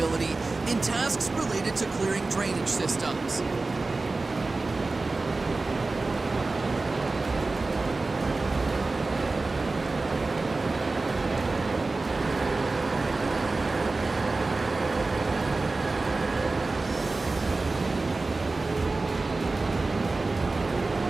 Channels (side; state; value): left; quieter; 3.5 dB